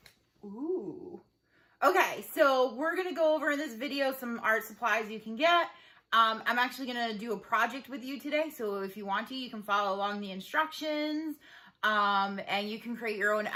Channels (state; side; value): identical; both; correlation 1.00